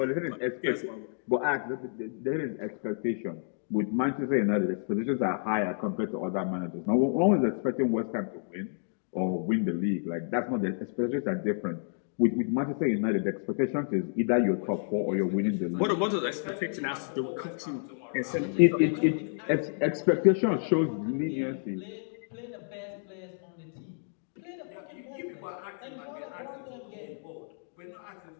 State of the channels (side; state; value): right; silent; digital silence